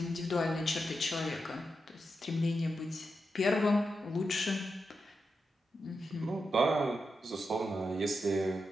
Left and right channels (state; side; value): normal; both; correlation 0.87